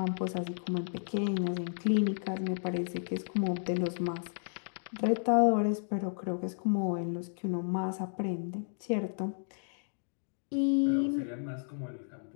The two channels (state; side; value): silent; right; digital silence